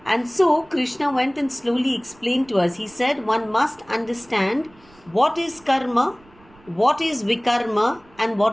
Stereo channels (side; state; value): right; noise; rumble, 28 dB below the sound